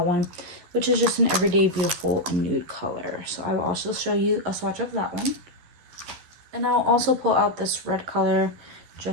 one, which is just an everyday beautiful nude color. So I will also show you a swatch of that one. And I'll also pull out this red color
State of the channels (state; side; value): late; left; 11 ms